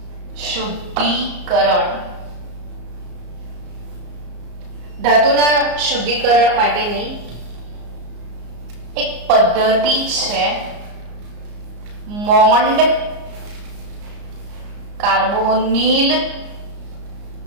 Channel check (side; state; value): left; late; 34 ms